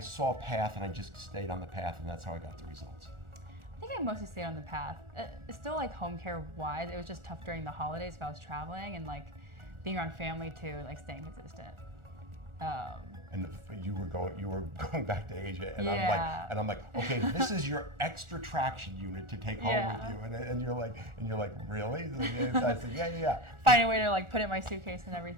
a path and I just stayed on the path and that's how I got the results? I think I mostly stayed on the path. Still like home care wise, it was just tough during the holidays if I was traveling, and like being around family too, like staying consistent. And you were going back to Asia, and Yeah. I'm like, okay, this is your extra traction unit to take home Yeah. with you, and you're like, really? I said, yeah. Find a way to like put it in my suitcase and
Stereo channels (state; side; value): late; left; 1.4 ms